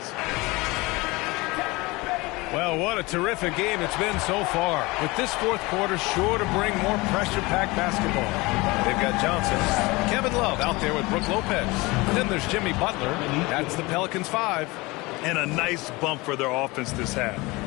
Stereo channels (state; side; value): quieter; right; 23.2 dB